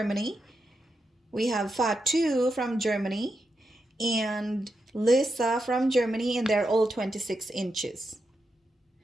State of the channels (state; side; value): normal; both; correlation 0.86